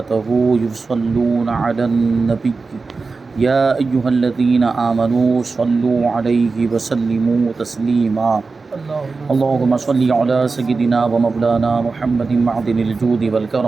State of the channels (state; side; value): quieter; left; 4.2 dB